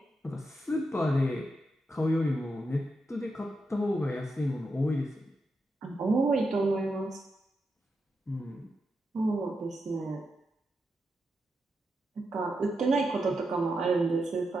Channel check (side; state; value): both; normal; correlation 0.86